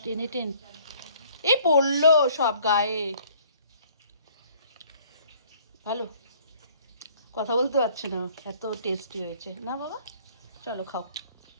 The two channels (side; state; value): both; inverted; correlation -0.57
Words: 10 এ 10। এই পড়লো সব গায়ে। ভালো, কথা বলতে পারছে না, এত টেস্টি হয়েছে না বাবা। চলো খাও।